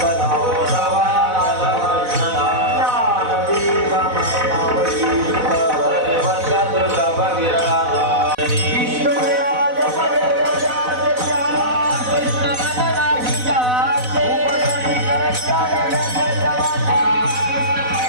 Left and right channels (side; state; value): left; late; 4.0 ms